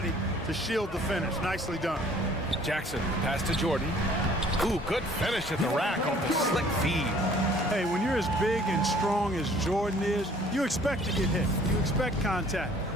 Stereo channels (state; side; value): normal; both; correlation 0.55